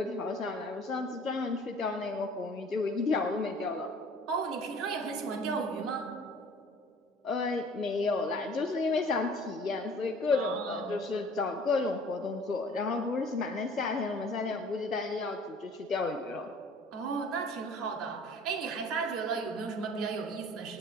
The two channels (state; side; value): normal; both; correlation 0.49